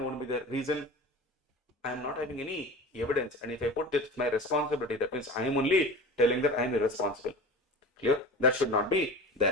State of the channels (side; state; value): both; normal; correlation 0.35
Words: be there. Reason, I am not having any evidence, and if I put this my responsibility, that means I am only telling that I am irresponsible. Clear? That should not be